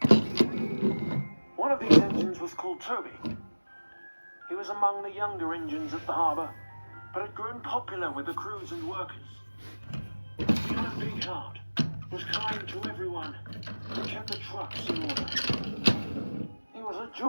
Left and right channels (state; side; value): inverted; both; correlation -1.00